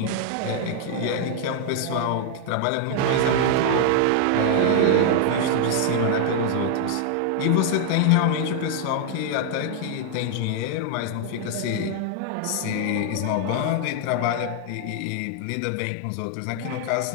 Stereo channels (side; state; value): both; different; correlation 0.00